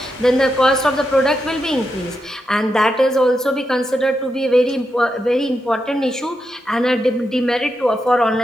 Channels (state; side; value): normal; both; correlation 0.85